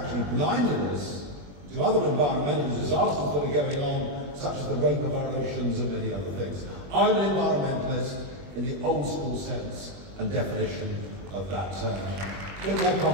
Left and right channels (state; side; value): late; left; 21 ms